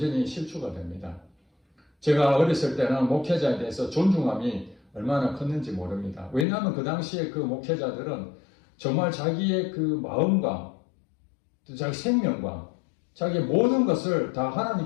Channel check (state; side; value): drops out; right; at 6.5 s